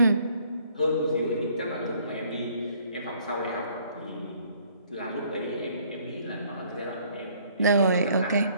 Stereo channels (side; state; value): both; inverted; correlation -0.61